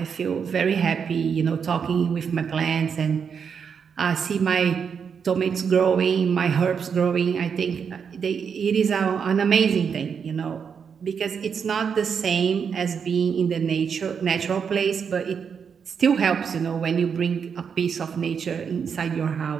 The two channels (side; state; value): left; quieter; 6.7 dB